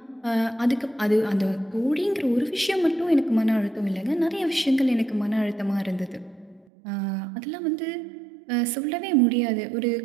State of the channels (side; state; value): left; drops out; at 6.7 s